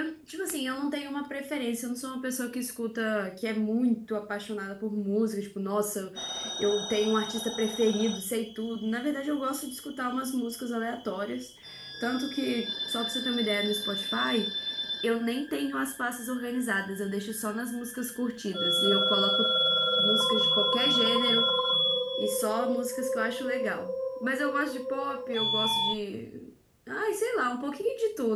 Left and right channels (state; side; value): identical; both; correlation 1.00